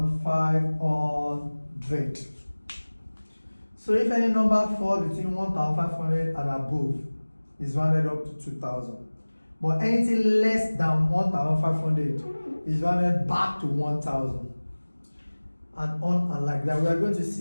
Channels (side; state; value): both; inverted; correlation -1.00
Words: So if any number falls between 1,500 and above, is rounded up to 2,000. But anything less than 1,500 is rounded back to 1,000. And on and like that. We are going to